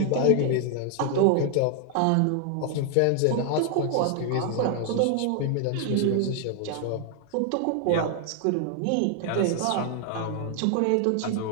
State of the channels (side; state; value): both; different; correlation 0.00